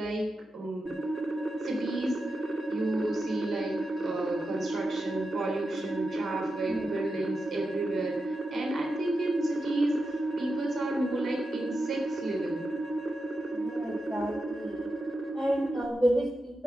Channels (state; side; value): normal; both; correlation 0.89